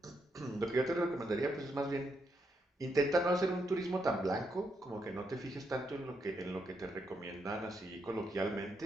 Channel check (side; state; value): both; normal; correlation 0.79